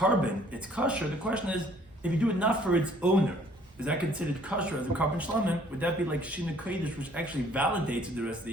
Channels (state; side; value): normal; both; correlation 0.59